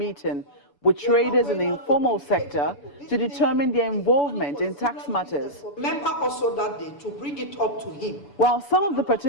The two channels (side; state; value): right; late; 7.0 ms